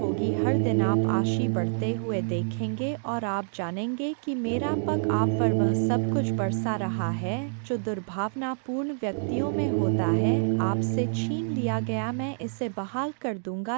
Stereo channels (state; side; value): silent; left; digital silence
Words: हर दिन आप आशी बढ़ते हुए देखेंगे और आप जानेंगे कि मेरा पग आप पर वह सब कुछ बरसा रहा है जो दुर्भावनापूर्ण व्यक्तियों में होता है। आपसे छीन लिया गया मैं इसे बहाल कर दूंगा।